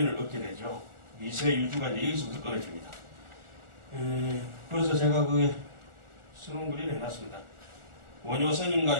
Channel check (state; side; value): late; left; 1.4 ms